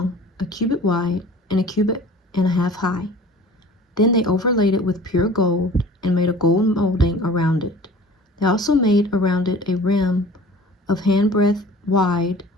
1 cubit wide, and 1.5 cubits high. Then they overlaid it with pure gold and made a gold molding around it. They also made around it a rim of handbreadth wide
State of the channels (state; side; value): normal; both; correlation 0.44